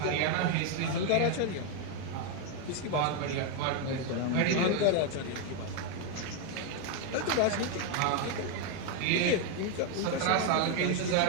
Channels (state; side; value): different; both; correlation 0.01